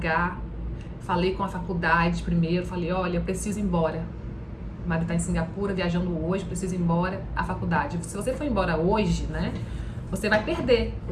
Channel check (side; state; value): both; identical; correlation 1.00